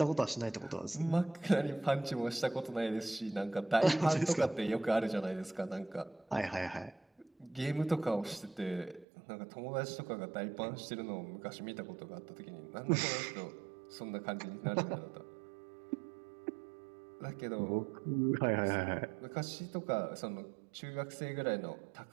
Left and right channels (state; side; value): drops out; left; at 9.1 s